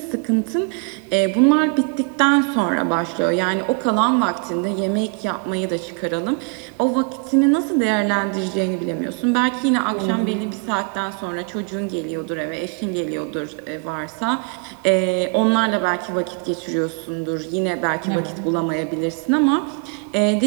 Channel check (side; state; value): left; quieter; 35.5 dB